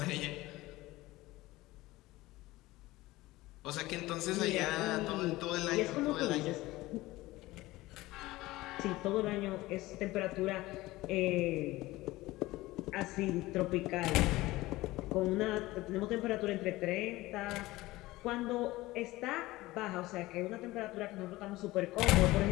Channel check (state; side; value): quieter; right; 18.7 dB